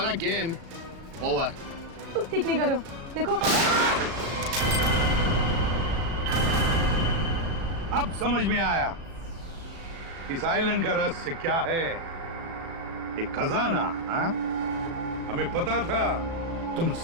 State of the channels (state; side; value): late; left; 36 ms